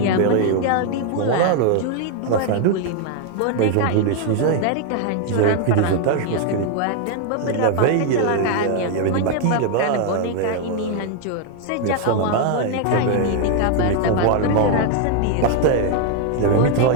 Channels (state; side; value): different; both; correlation 0.00